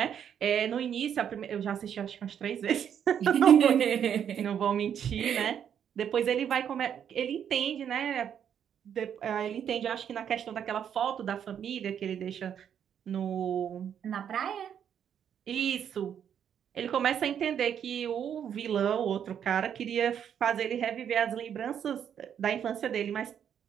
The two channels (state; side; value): quieter; left; 8.7 dB